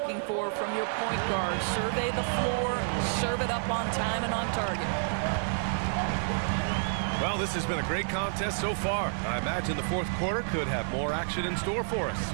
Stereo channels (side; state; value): left; silent; digital silence